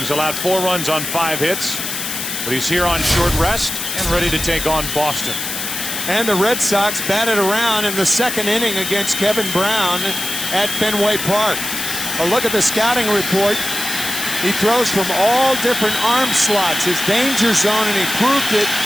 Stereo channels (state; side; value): noise; left; hiss, 4 dB below the sound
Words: allowed 4 runs on 5 hits, but he's here on short rest and ready to take on Boston. And the Red Sox batted around in the 2nd inning against Kevin Brown at Fenway Park. A look at the scouting report. He throws from all different arm slots, his danger zone, and he proved it